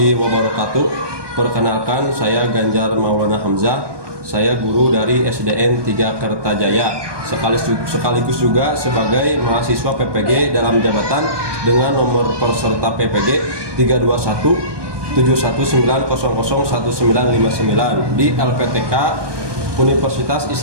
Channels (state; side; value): late; left; 1.2 ms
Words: wabarakatuh. Perkenalkan, saya Ganjar Maulana Hamzah. Saya guru dari SDN 3 Kertajaya, sekaligus juga sebagai mahasiswa PPG dalam jabatan dengan nomor peserta PPG 32171900199 di LPTK Universitas